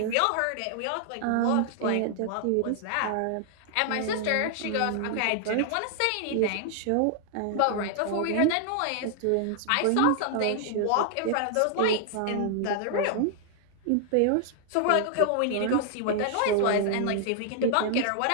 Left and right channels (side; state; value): both; different; correlation 0.00